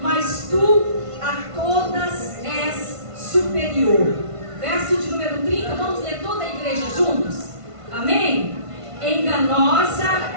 mas tu a todas és superior. Verso de número 30, vamos ler toda a igreja juntos? Amém? Enganosa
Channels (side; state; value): left; late; 1.5 ms